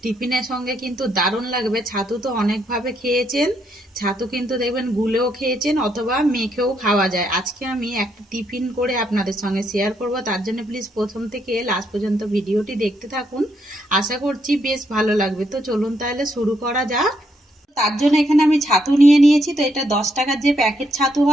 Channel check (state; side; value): normal; both; correlation 0.76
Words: টিফিনের সঙ্গে কিন্তু দারুণ লাগবে। ছাতু তো অনেকভাবে খেয়েছেন, ছাতু কিন্তু দেখবেন গুলেও খেয়েছেন অথবা মেখেও খাওয়া যায়। আজকে আমি একটা টিফিন করে আপনাদের সঙ্গে শেয়ার করব, তার জন্য প্লিজ প্রথম থেকে লাস্ট পর্যন্ত ভিডিওটি দেখতে থাকুন। আশা করছি বেশ ভালো লাগবে। তো চলুন তাহলে শুরু করা যাক। তার জন্য এখানে আমি ছাতু নিয়ে নিয়েছি। তো এটা 10 টাকার যে প্যাকেট ছাতু